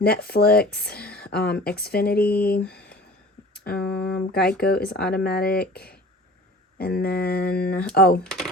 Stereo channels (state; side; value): normal; both; correlation 0.43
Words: Netflix, Xfinity, Geico is automatic. And then, oh,